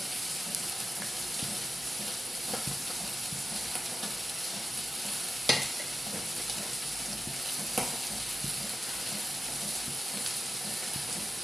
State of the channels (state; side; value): normal; both; correlation 0.93